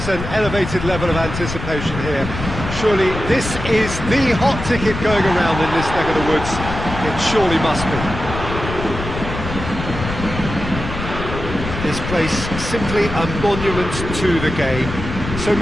an elevated level of anticipation here. Surely this is the hot ticket going around in this neck of the woods. It surely must be. This place simply a monument to the game. So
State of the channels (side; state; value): left; noise; rumble, 7 dB below the sound